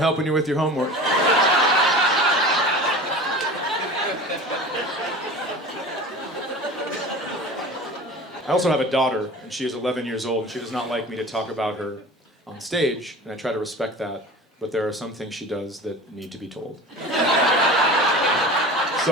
you with your homework. I also have a daughter, and she is 11 years old, and she does not like me to talk about her on stage, and I try to respect that, but there are some things she does that need to be told.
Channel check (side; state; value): both; normal; correlation 0.37